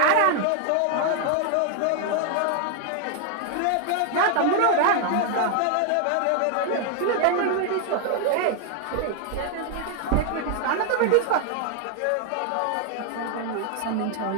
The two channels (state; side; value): different; both; correlation 0.00